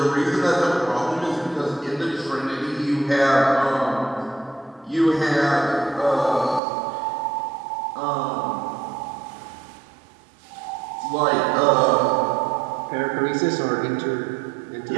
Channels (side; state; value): left; drops out; at 6.6 s